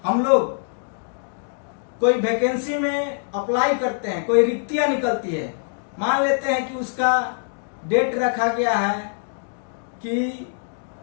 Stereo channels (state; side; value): silent; right; digital silence